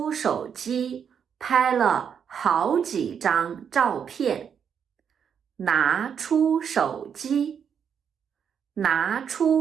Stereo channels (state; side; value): quieter; left; 7.5 dB